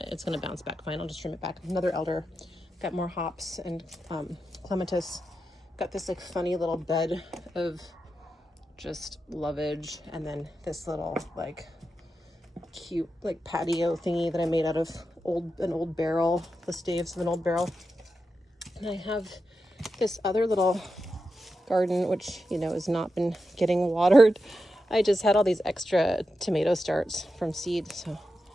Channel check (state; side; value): normal; both; correlation 0.89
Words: It's gonna bounce back fine. I'll just trim it back. Another elder, got more hops and clematis. Got this like funny little bed of just lovage, and then this little like cute like patio thingy that I made out of an old barrel, the staves of an old barrel. And I have this other little garden, which, you know, has not been getting watered. I just had all these extra tomato starts from seed, so